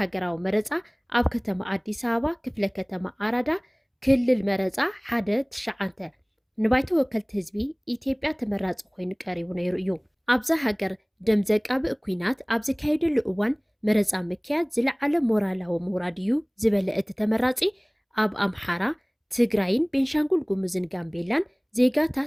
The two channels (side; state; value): both; identical; correlation 1.00